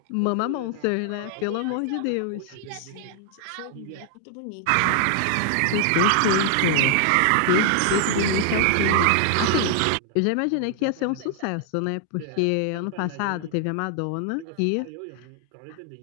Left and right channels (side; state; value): both; different; correlation 0.00